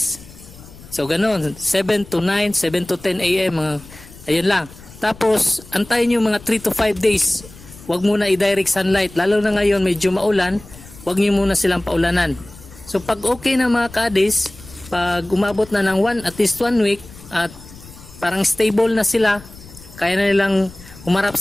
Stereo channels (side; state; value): left; noise; rumble, 20 dB below the sound